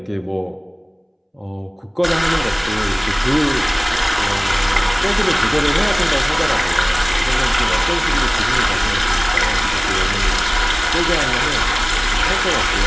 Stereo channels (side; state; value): both; identical; correlation 1.00